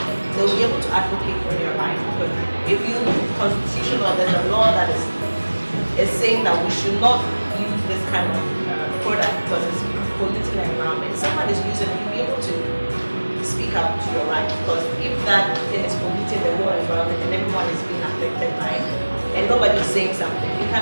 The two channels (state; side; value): inverted; both; correlation -1.00